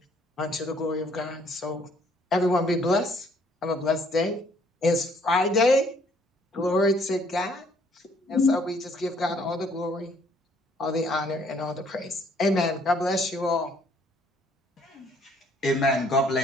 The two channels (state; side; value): normal; both; correlation 0.63